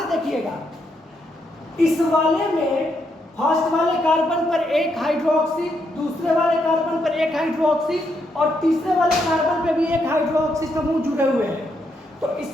देखिएगा, इस वाले में फर्स्ट वाले कार्बन पर एक हाइड्रोक्सी, दूसरे वाले कार्बन पर एक हाइड्रोक्सी और तीसरे वाले कार्बन पर भी एक हाइड्रोक्सी समूह जुड़े हुए हैं। तो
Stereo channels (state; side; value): normal; both; correlation 0.78